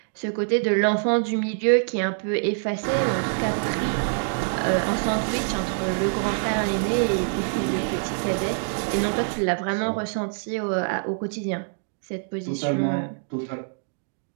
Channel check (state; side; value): silent; left; digital silence